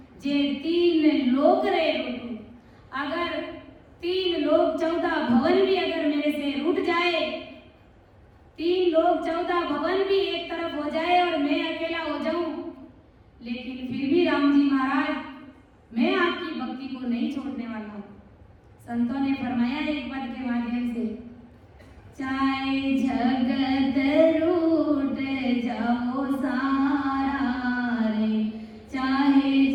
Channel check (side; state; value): both; identical; correlation 1.00